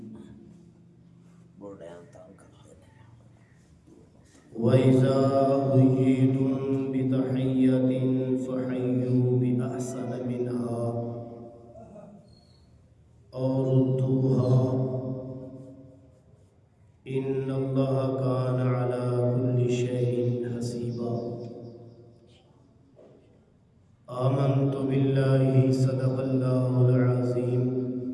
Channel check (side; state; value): both; identical; correlation 1.00